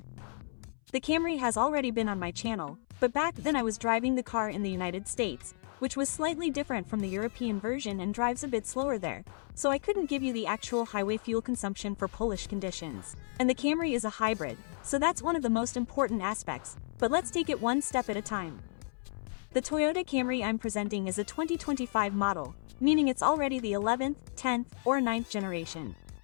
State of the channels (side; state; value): right; silent; 56 dB below the other